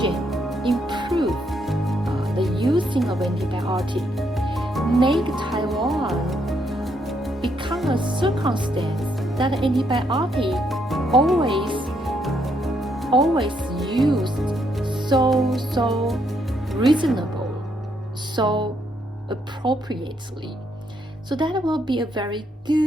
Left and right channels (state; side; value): normal; both; correlation 0.75